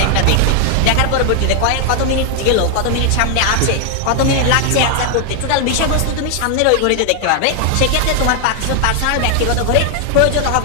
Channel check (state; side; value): different; both; correlation 0.00